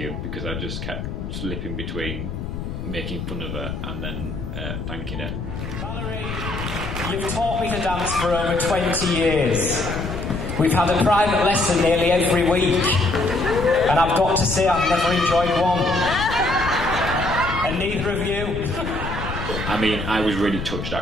because I just kept slipping between making fun of her and then thanking her. Valerie, you've taught me to dance for over 20 years. We've had a private lesson nearly every week, and I've got to say I've never enjoyed one. And neither of you. I mean, I was really touched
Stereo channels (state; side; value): noise; left; rumble, 6 dB below the sound